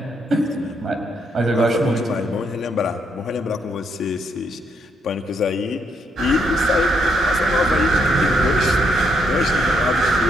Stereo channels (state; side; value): normal; both; correlation 0.75